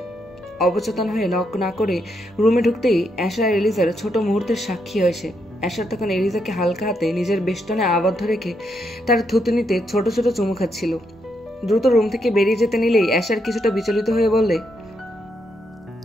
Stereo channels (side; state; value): both; normal; correlation 0.79